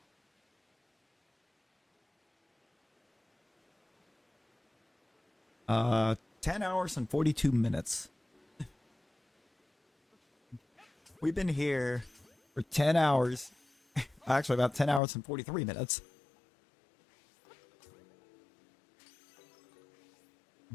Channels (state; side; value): drops out; right; at 15.0 s